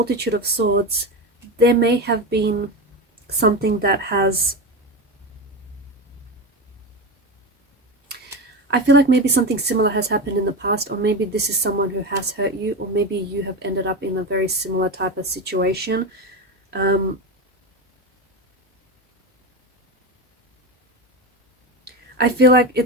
of swords, there may have been something that has, I feel like maybe something similar has happened in the past, or maybe this is someone who has hurt you, or maybe you have ended up in a very similar type of situation. I feel like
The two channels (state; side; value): normal; both; correlation 0.19